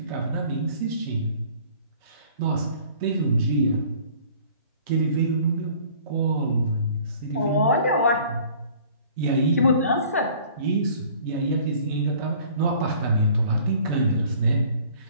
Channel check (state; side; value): inverted; both; correlation -0.52